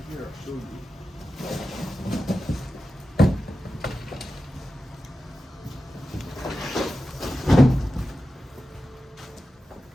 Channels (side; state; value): both; normal; correlation 0.92